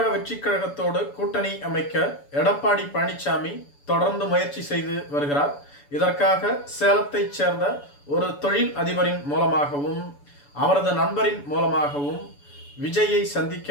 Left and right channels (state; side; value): late; right; 7.0 ms